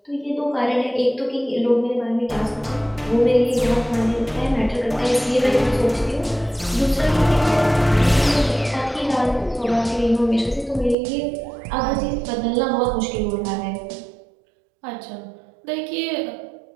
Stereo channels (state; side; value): drops out; left; at 11.0 s